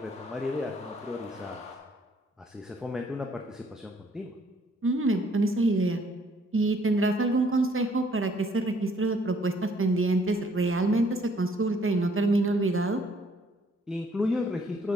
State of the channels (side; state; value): both; normal; correlation 0.63